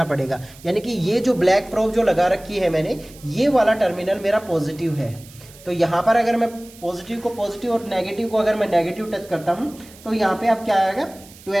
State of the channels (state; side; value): noise; right; hiss, 22 dB below the sound